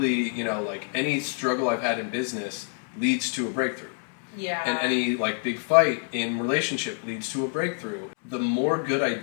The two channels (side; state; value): right; silent; 57 dB below the other